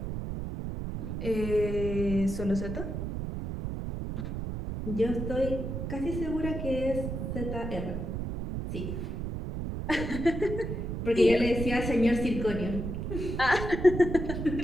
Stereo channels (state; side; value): noise; right; rumble, 4 dB below the sound